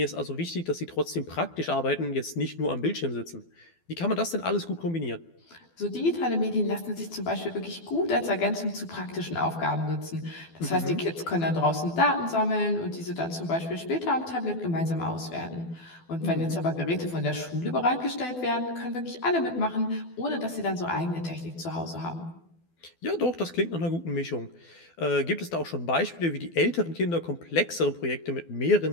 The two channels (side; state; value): right; late; 12 ms